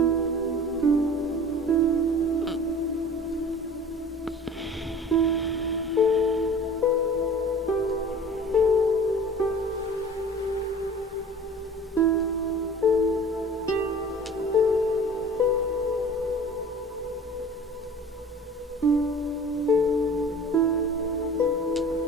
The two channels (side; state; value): both; normal; correlation 0.42